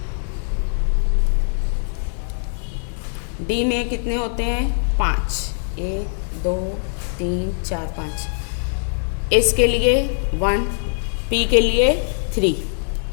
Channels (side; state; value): right; silent; 64 dB below the other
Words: डी में कितने होते हैं, 5, 1 2 3 4 5. एस के लिए 1, पी के लिए 3,